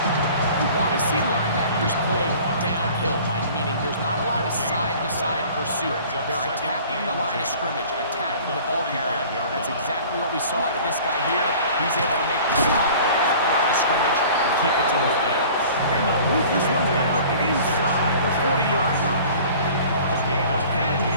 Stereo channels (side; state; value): both; inverted; correlation -0.46